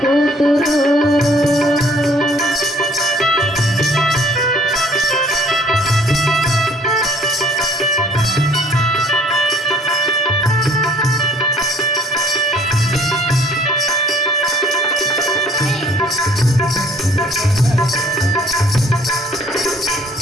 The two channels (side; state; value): both; normal; correlation 0.57